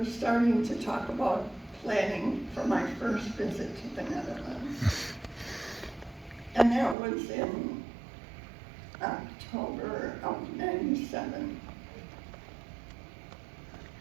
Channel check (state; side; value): drops out; left; at 7.0 s